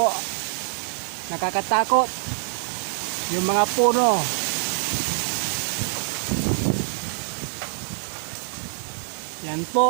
nakakatakot yung mga puno. Yan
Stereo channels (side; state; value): left; silent; 62 dB below the other